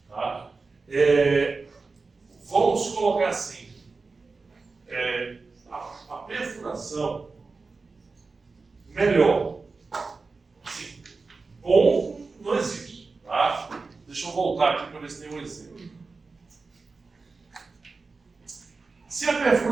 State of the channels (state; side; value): quieter; left; 4.1 dB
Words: Tá? Vamos colocar assim, a perfuração melhor. Assim, bom não existe. Tá? Deixa eu voltar aqui para ver se tem um exemplo. Se a